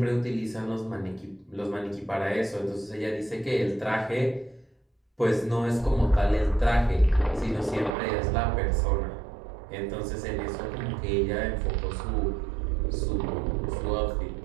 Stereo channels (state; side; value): drops out; left; at 8.0 s